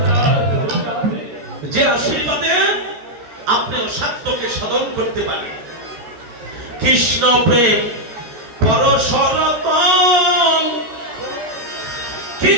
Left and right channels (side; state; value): left; late; 13 ms